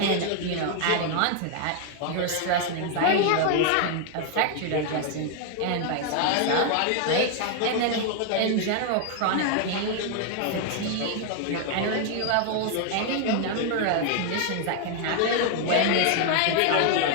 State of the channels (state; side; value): different; both; correlation 0.00